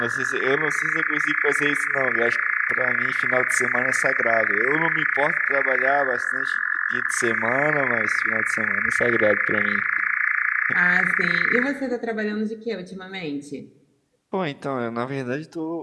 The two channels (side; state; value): both; identical; correlation 1.00